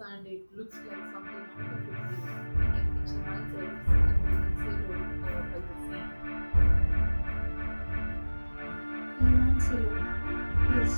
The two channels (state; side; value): inverted; both; correlation -1.00